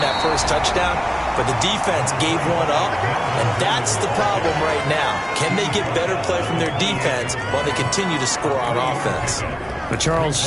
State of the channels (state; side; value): identical; both; correlation 1.00